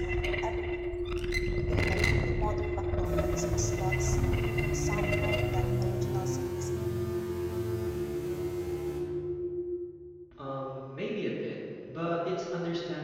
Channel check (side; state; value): both; identical; correlation 1.00